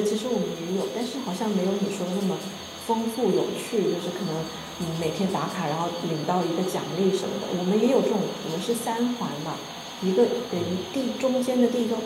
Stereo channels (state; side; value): identical; both; correlation 1.00